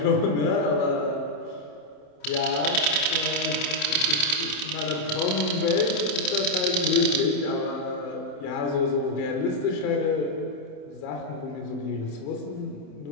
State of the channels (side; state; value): right; late; 27 ms